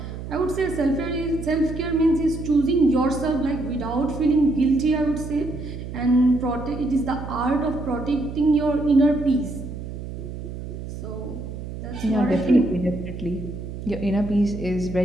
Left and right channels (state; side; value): noise; right; hum, 9 dB below the sound